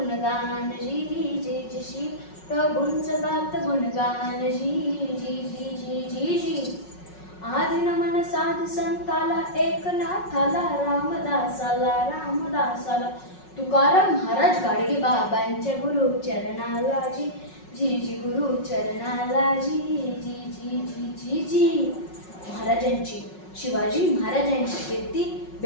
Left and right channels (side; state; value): right; late; 5.4 ms